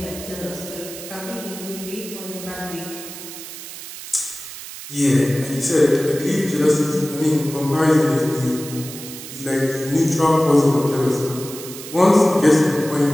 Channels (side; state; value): right; noise; hiss, 12 dB below the sound